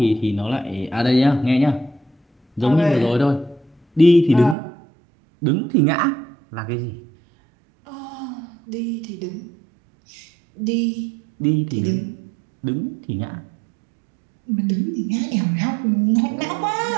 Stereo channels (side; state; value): left; drops out; at 4.5 s